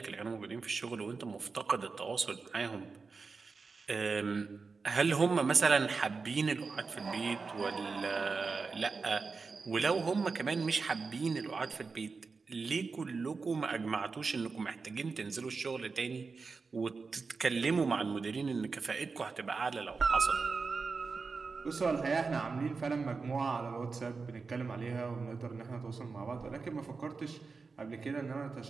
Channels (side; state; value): left; quieter; 4.5 dB